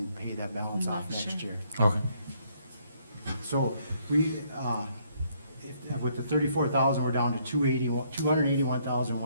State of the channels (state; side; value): inverted; both; correlation -0.69